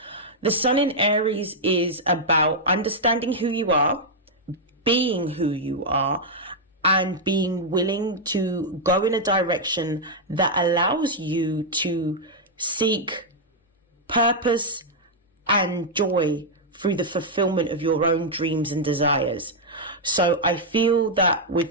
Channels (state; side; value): normal; both; correlation -0.04